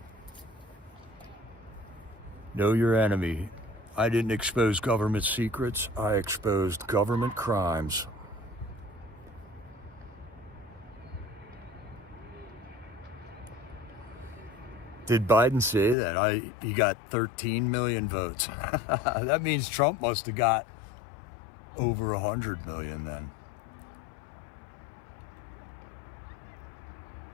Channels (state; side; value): drops out; right; at 16.0 s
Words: Know your enemy. I didn't expose government secrets. I exposed government crimes. Did Biden say that he got 13 million votes? That means Trump must have got over 100 million then.